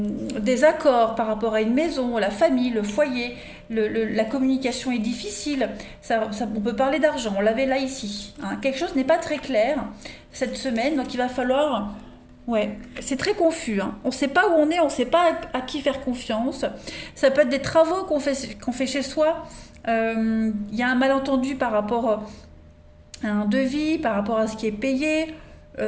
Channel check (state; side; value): identical; both; correlation 1.00